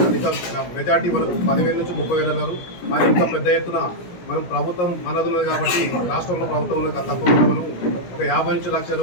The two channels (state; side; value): late; right; 17 ms